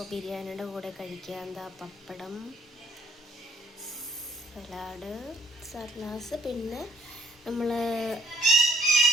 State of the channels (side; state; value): both; normal; correlation 0.65